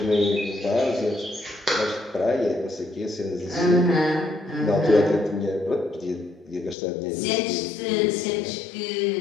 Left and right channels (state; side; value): drops out; right; at 6.8 s